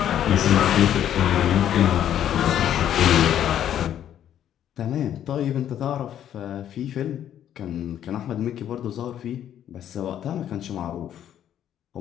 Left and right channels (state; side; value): quieter; right; 10.5 dB